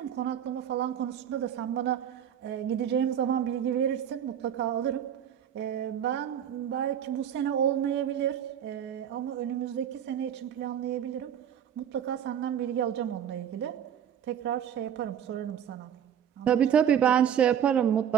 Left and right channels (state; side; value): quieter; left; 9.2 dB